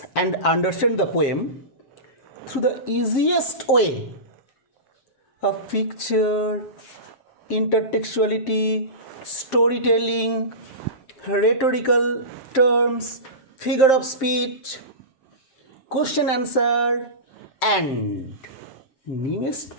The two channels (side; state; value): right; late; 7.6 ms